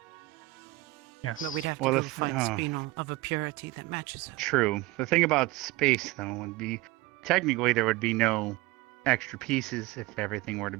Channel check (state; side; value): quieter; left; 20.0 dB